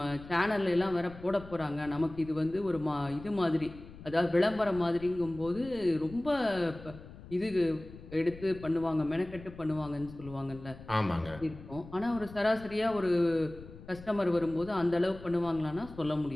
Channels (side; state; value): left; noise; rumble, 17 dB below the sound